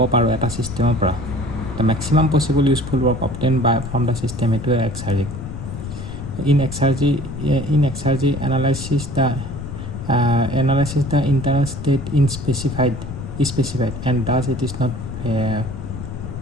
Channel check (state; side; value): noise; left; rumble, 9 dB below the sound